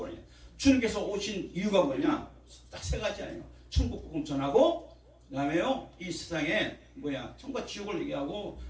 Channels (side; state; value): both; identical; correlation 1.00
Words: 주님께서 오신 이유가 뭐냐 딱 3가지 아니에요. 천국 복음 전하고 그 다음에요 이 세상에 천국과 지옥을 얘기하고